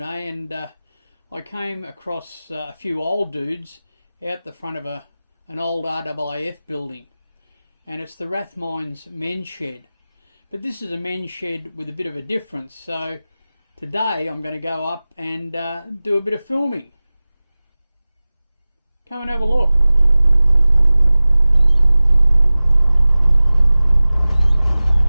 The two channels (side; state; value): both; inverted; correlation -0.98